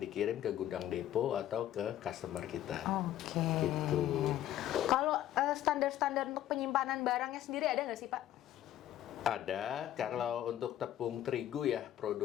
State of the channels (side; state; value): right; quieter; 12.4 dB